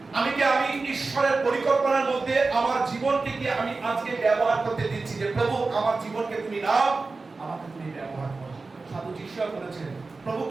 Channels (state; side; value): quieter; left; 3.8 dB